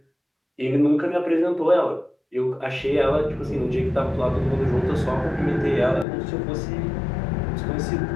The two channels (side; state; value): right; drops out; at 6.1 s